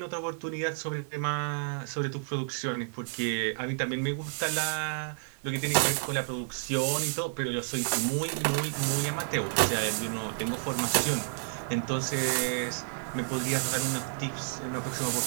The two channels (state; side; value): silent; left; digital silence